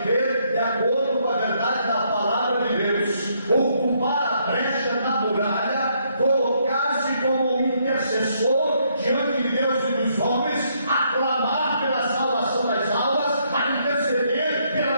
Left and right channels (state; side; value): inverted; both; correlation -0.72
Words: de acordo com a verdade da palavra de Deus, ocupar a brecha na muralha, colocar-se como um intercessor diante de Deus e dos homens, aclamar pela salvação das almas, a interceder pela